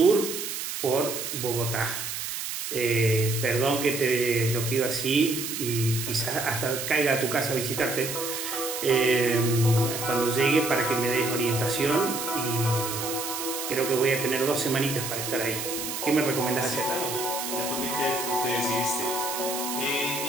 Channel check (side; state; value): right; noise; hiss, 5 dB below the sound